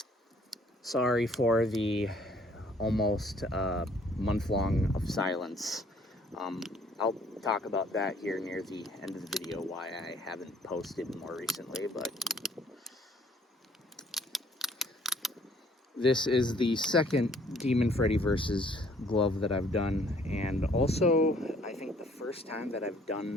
Sorry for the almost month long of silence. I'll talk about that here near the end of the video, why I haven't posted more recently, but this is the second Demon Freddy versus glove that I've done, and also I think the first time that I've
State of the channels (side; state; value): both; normal; correlation 0.60